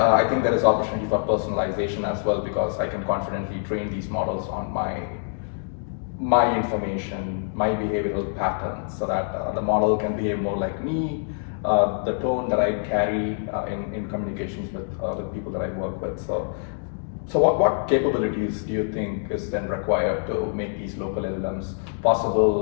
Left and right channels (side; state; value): right; silent; digital silence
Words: think there is opportunity for personalization as well, because I can confidently train these models on my information, my behavioral patterns, so that the model can behave more like me, the tone that I carry in communications with people that I work with. So what capabilities do you think is then required to make these local LLMs